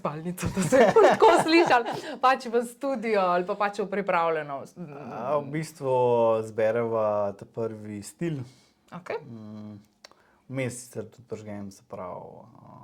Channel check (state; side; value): identical; both; correlation 1.00